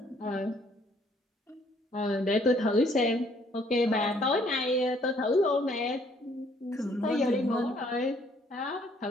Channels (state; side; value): normal; both; correlation 0.64